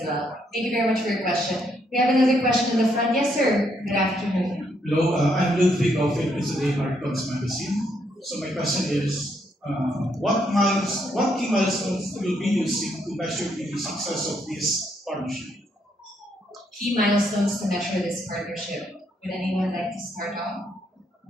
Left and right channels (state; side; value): normal; both; correlation 0.74